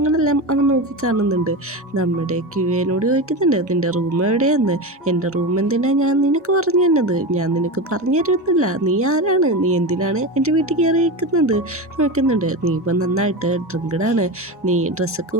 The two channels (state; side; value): normal; both; correlation 0.21